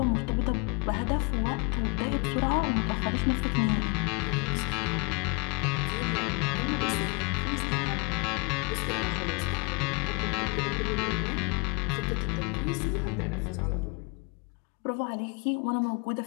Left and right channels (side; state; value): right; quieter; 30.7 dB